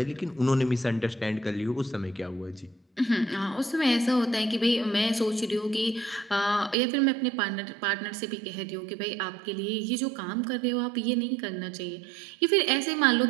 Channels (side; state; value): left; drops out; at 6.8 s